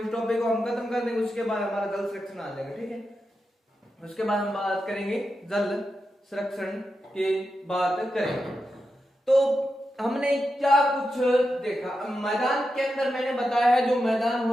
को हम खत्म कर देंगे। उसके बाद हमारा जल संरक्षण आ जाएगा, ठीक है। उसके बाद हम बात करेंगे जल संरक्षण की बात करेंगे। तो हमने क्या कुछ देखा मैदान के अंदर, मैंने बताया है जो मैदान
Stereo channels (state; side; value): normal; both; correlation 0.88